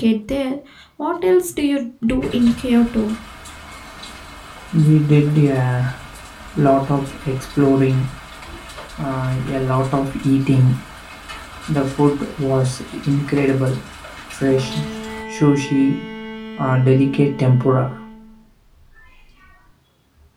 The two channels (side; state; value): both; identical; correlation 1.00